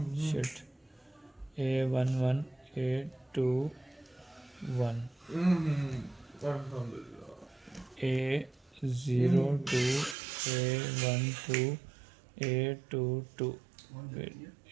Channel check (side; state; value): left; drops out; at 10.2 s